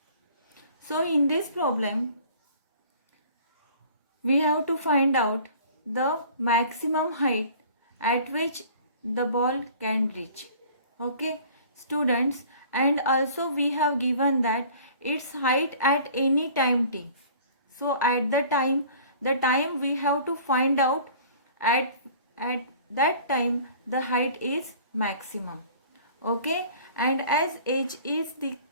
So in this problem we have to find out the maximum height at which the ball can reach. Okay students, and also we have given that its height at any time t. So at the time we have to find out at that time the height is maximum. Okay, and as h is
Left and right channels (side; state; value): both; inverted; correlation -0.48